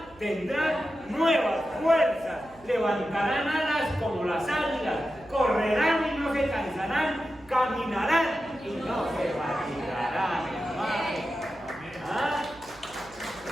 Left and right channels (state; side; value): noise; right; hum, 24 dB below the sound